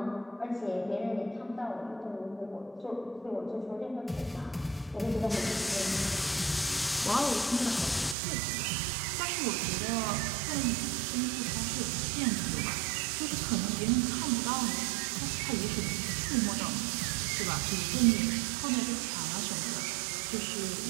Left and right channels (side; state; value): left; drops out; at 8.2 s